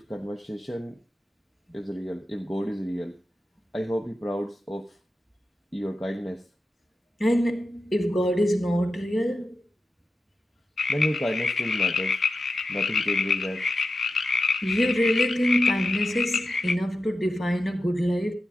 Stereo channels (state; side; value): normal; both; correlation 0.90